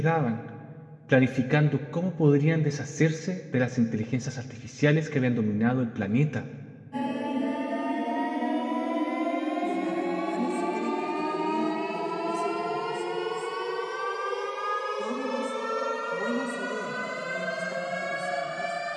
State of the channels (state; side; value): identical; both; correlation 1.00